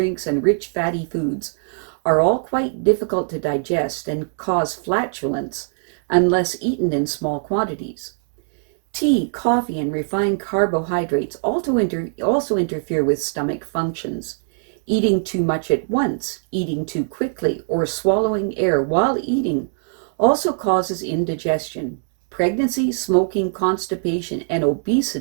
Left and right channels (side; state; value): left; silent; digital silence